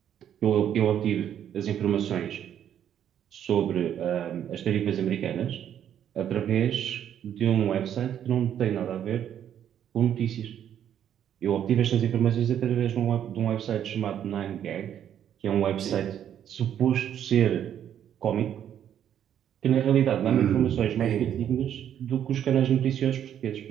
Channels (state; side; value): quieter; left; 9.8 dB